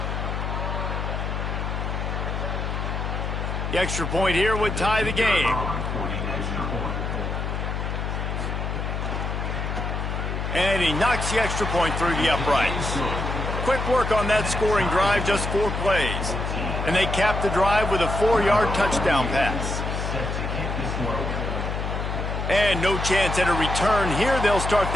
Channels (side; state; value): left; noise; hum, 3 dB below the sound